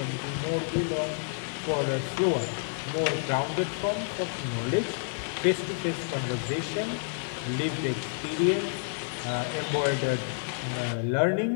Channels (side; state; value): right; silent; 58 dB below the other